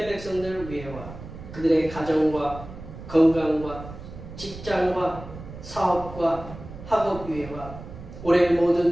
백성들을 위해와 그들의 가정과 건강과 직장과 사업과 학업 위해와 올해의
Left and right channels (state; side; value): noise; right; rumble, 13 dB below the sound